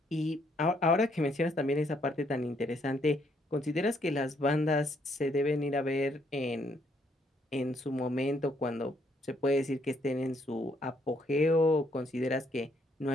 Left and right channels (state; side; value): normal; both; correlation 0.71